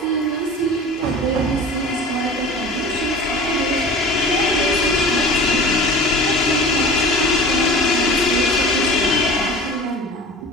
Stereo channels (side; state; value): both; normal; correlation 0.39